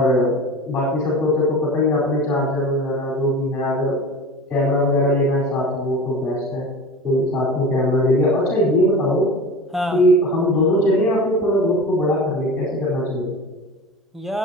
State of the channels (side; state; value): both; normal; correlation 0.34